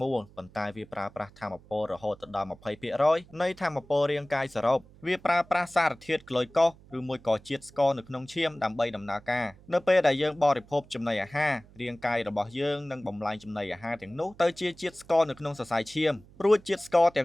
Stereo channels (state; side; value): noise; right; hum, 24 dB below the sound